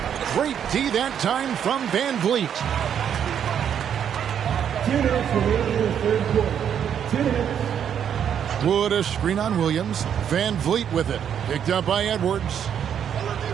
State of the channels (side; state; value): left; quieter; 8.7 dB